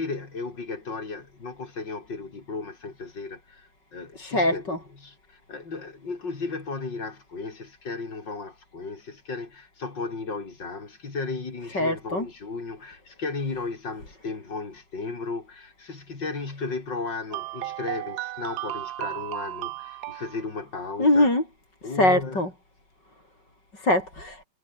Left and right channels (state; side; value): late; right; 5.3 ms